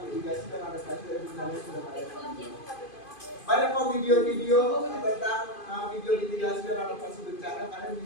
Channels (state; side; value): late; right; 2.5 ms